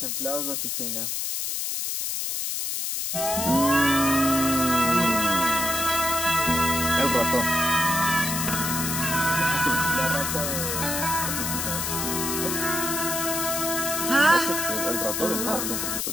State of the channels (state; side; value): noise; left; hiss, 2 dB below the sound